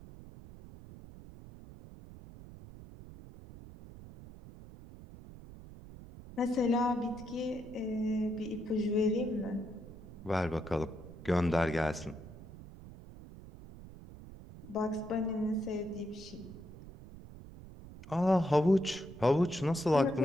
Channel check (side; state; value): right; noise; rumble, 16 dB below the sound